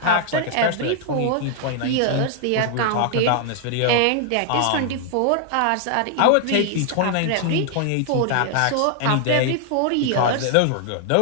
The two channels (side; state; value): both; different; correlation 0.00